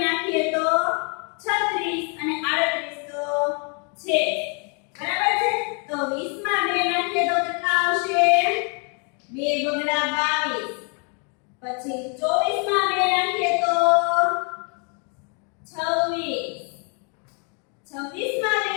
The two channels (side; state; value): right; quieter; 37.2 dB